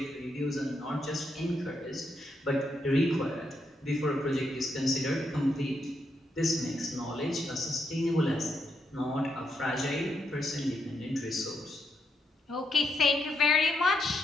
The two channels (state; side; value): normal; both; correlation 0.80